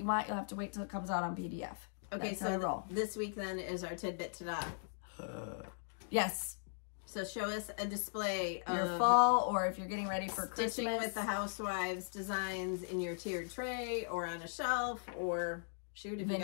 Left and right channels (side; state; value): right; silent; digital silence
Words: want, you'll have to wait till it comes out on PDF. Okay, That's so this week then is our tidbit ta-da. Yes. So show us a display of your fall, or if you're getting ready for Christmas. Stitching with the Housewives designs in your tiered tray or on a shelf, or shoot, if